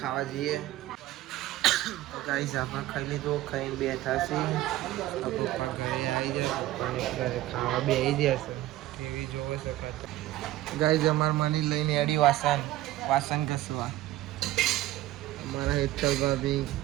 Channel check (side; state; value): left; quieter; 15.4 dB